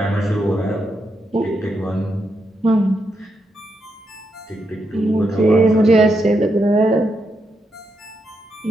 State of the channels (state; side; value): normal; both; correlation 0.83